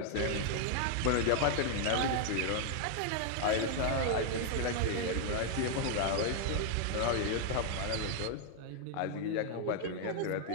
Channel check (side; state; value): both; different; correlation 0.00